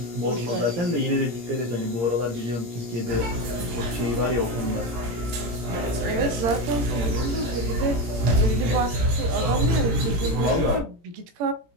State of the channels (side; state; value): left; late; 17 ms